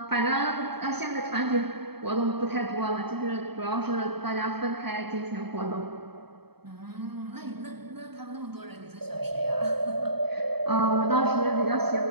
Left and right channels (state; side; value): late; left; 0.97 ms